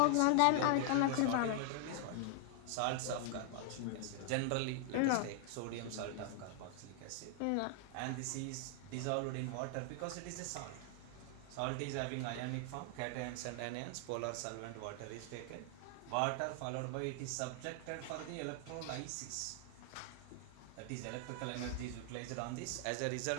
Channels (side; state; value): both; different; correlation 0.00